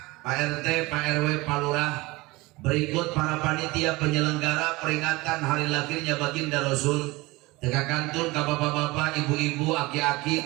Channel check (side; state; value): left; quieter; 22.1 dB